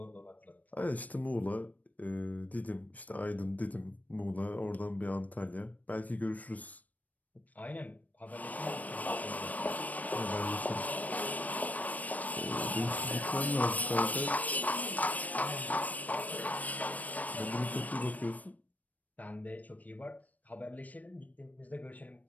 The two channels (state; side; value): late; right; 0.074 ms